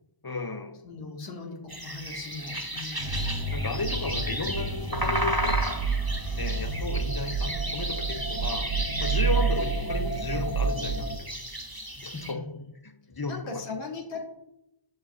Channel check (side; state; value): right; late; 1.0 ms